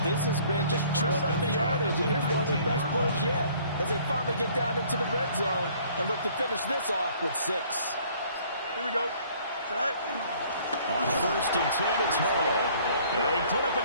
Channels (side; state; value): both; inverted; correlation -0.57